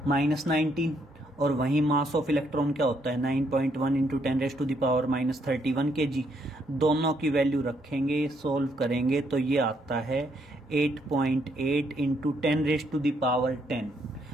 और वहीं मास ऑफ इलेक्ट्रॉन क्या होता है, 9.1 इंटू 10⁻31 kg। दोनों की वैल्यू रखेंगे, सोल्व करेंगे, तो ये आता है 8.8 इंटू 10⁻10,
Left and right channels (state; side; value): normal; both; correlation 0.73